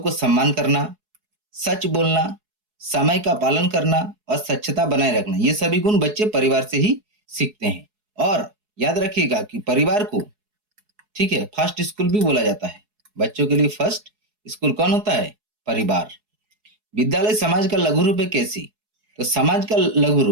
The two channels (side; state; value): left; late; 4.7 ms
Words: सम्मान करना, सच बोलना, समय का पालन करना और स्वच्छता बनाए रखना। ये सभी गुण बच्चे परिवार से ही सीखते हैं। और याद रखिएगा कि परिवार को, ठीक है, फर्स्ट स्कूल भी बोला जाता है। बच्चों के लिए फर्स्ट स्कूल कौन होता है? परिवार। विद्यालय समाज का लघु रूप है। कैसी? तो समाज का लघु